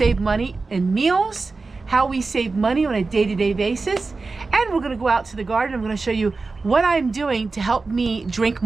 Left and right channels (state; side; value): quieter; left; 3.9 dB